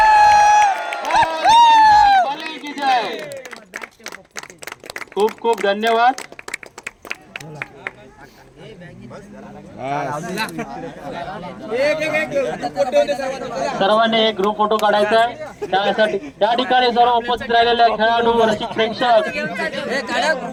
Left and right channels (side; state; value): both; identical; correlation 1.00